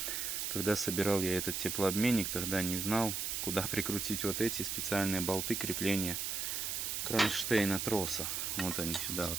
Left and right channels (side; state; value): right; noise; hiss, 2 dB below the sound